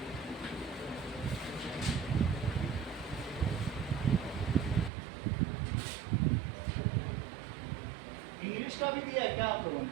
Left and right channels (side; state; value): left; drops out; at 4.9 s